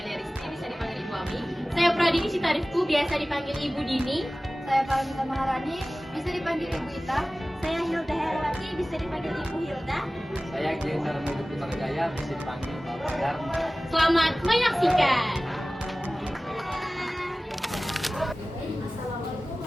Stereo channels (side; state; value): both; normal; correlation 0.97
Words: Rizky, bisa dipanggil Ibu Ami. Saya Pradini Citarifku, biasa dipanggil Ibu Dini. Saya Paramita Maharani, bisa dipanggil Ibu Ita. Saya Hilda Herawati, bisa dipanggil Ibu Hilda. Saya Geser Medu Putra Jaya, bisa dipanggil Bapak Dharma. Selamat menyaksikan. Assalamualaikum